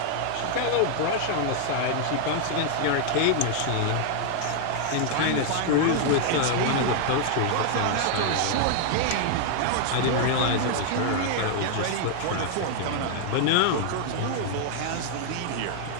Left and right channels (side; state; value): both; different; correlation 0.00